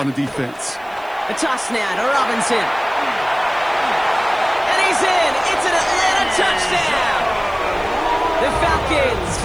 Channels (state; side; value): noise; right; hiss, 29 dB below the sound